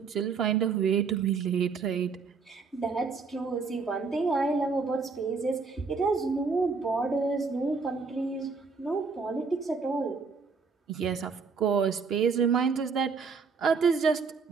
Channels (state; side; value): quieter; left; 5.0 dB